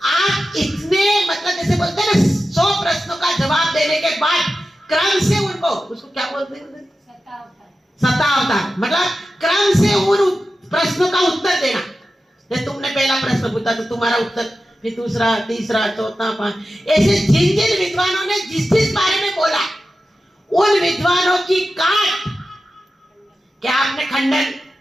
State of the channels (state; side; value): normal; both; correlation 0.93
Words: इतने, मतलब जैसे बोलते हैं ना, 100 प्रश्नों का जवाब देने के बाद क्रम से उनको, उसको क्या बोलते हैं? शतावतार, मतलब क्रम से उन प्रश्नों का उत्तर देना। जैसे तुमने पहला प्रश्न पूछा तो तुम्हारा उत्तर, फिर दूसरा, तीसरा, चौथा, 5, ऐसे जिन जिन विद्वानों ने जिस जिस बारे में बोला, उन विद्वानों की काट, क्या आपने खंडन,